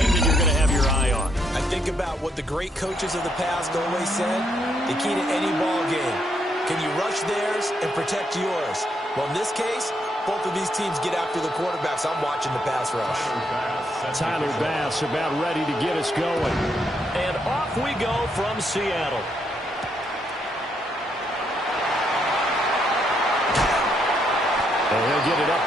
that you're going to have your eye on? I think about what the great coaches of the past always said. The key to any ball game. Can you rush theirs and protect yours? Well, in this case, both of these teams get after the quarterbacks. I'm watching the pass rush. Tyler Bass about ready to get us going. And off we go from Seattle. And he'll get it up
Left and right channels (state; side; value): normal; both; correlation 0.75